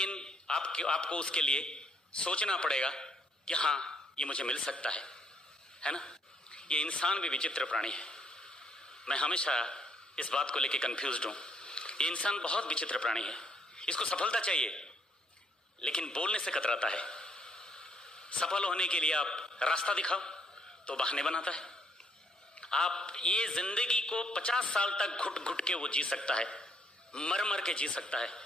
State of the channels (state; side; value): normal; both; correlation 0.69